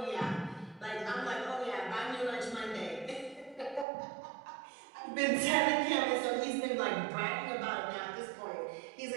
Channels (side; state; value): left; drops out; at 3.9 s